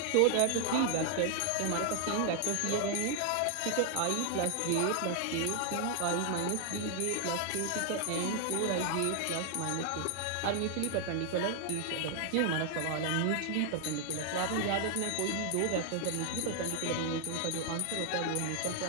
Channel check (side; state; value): both; different; correlation 0.00